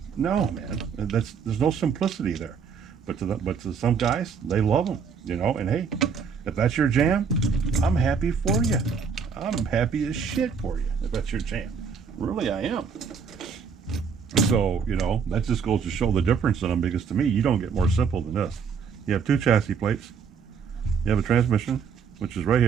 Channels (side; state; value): left; quieter; 6.2 dB